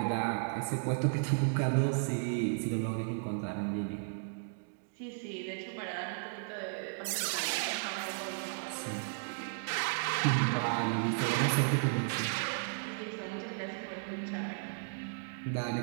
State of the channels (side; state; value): left; silent; digital silence